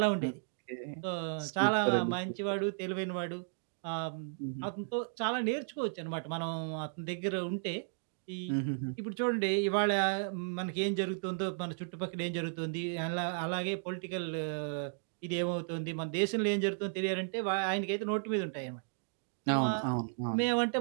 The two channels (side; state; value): left; silent; digital silence